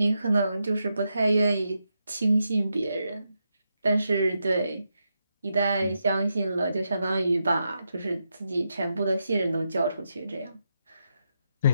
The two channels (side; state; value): both; inverted; correlation -0.84